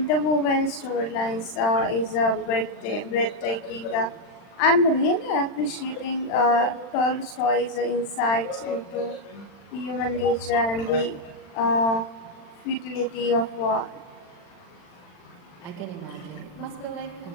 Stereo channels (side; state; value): right; late; 40 ms